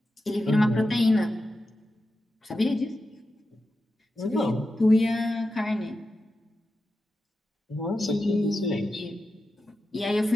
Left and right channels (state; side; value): normal; both; correlation 0.90